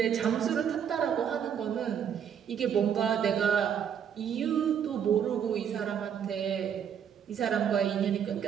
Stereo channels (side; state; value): left; quieter; 8.3 dB